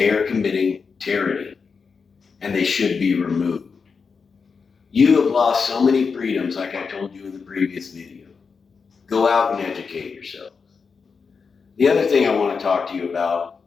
are committing tyranny and they should be removed. You have lost so many freedoms, like I told you in the previous video. Go out and educate yourselves. The other thing I want to talk to you about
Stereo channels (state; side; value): quieter; right; 5.3 dB